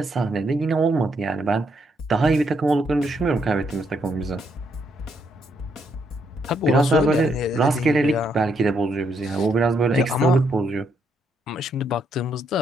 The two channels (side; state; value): both; normal; correlation 0.75